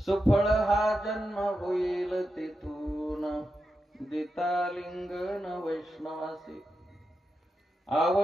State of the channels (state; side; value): normal; both; correlation 0.88